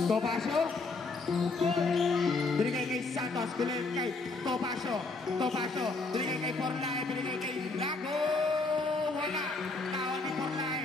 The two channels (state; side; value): quieter; right; 3.6 dB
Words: Binigay kay Santos. Binigay kay Topacio. Binigay kay Porlae. Binigay kay Lago. Wala. Nawa ni